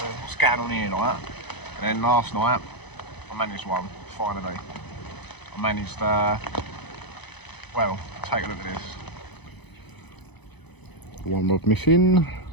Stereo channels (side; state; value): right; late; 0.99 ms